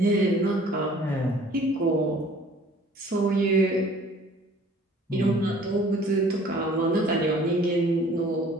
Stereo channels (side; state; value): both; normal; correlation 0.52